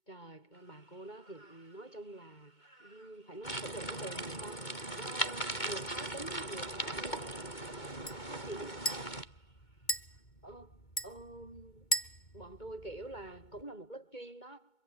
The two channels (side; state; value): right; late; 2.2 ms